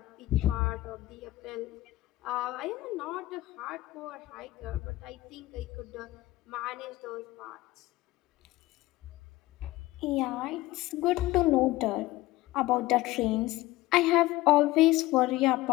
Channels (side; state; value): right; quieter; 17.8 dB